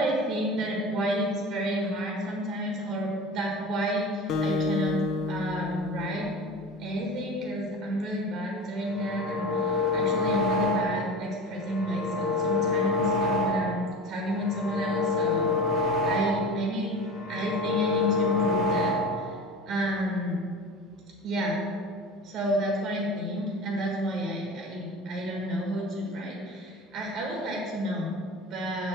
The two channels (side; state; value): both; normal; correlation 0.33